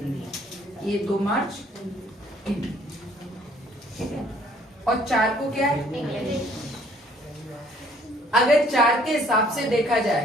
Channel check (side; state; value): both; normal; correlation 0.60